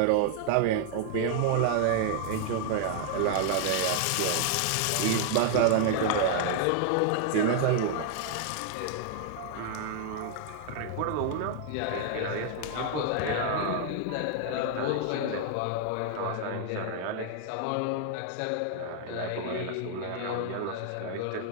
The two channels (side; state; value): both; different; correlation 0.00